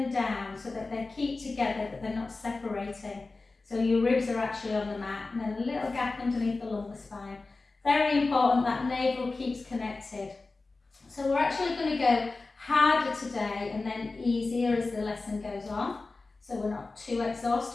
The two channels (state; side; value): quieter; right; 3.6 dB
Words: down so that they keep together, that they're not separating. So your ribs are actually on the mat, and then a little gap underneath the lumbar spine. Very important that navel keeps connected. So we're actually going to go harder today and then easier as the lesson goes on, so we're not too